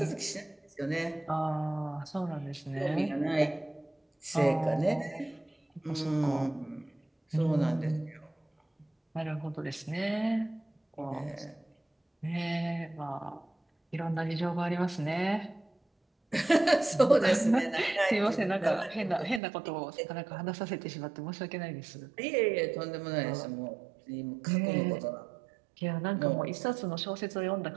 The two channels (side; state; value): left; drops out; at 19.4 s